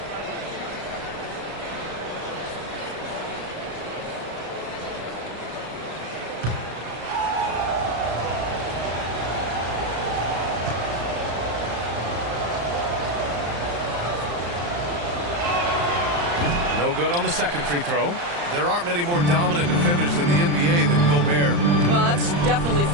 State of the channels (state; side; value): late; left; 35 ms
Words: No good on the second free throw. There aren't many more dominant defenders in the NBA than Gobert. Well, that's definitely